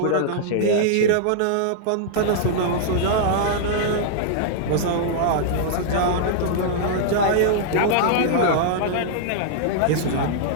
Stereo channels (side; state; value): both; different; correlation -0.01